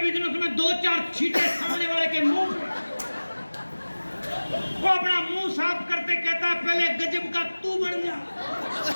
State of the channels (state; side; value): inverted; both; correlation -1.00